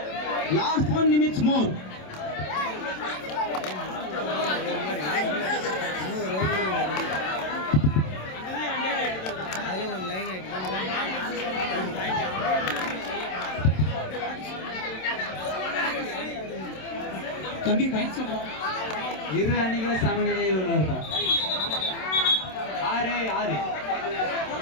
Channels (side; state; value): right; late; 27 ms